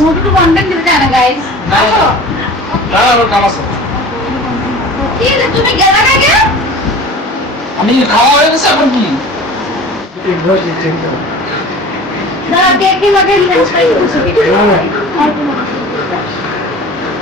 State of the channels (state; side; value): normal; both; correlation 0.40